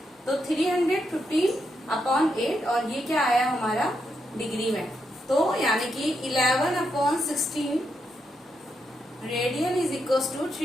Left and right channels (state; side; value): normal; both; correlation 0.82